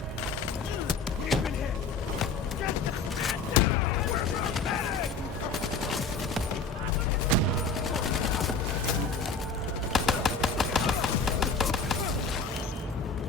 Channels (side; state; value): right; quieter; 4.3 dB